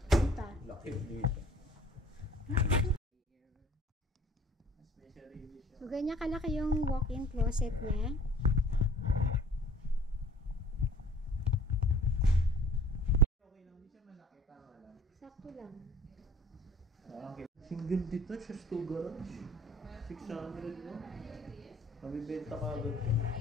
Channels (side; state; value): both; normal; correlation 0.52